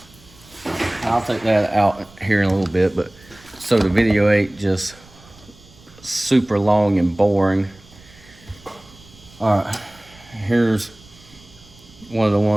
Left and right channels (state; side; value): noise; right; rumble, 24 dB below the sound